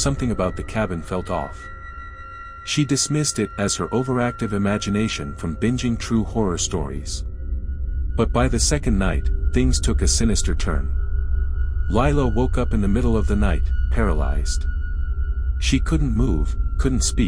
about the cabin felt off. She dismissed it as her overactive imagination from binging true horror stories. But by the second night, things took a sinister turn. Lila woke up in the middle of the night, paralyzed. She couldn't move, couldn't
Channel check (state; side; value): identical; both; correlation 1.00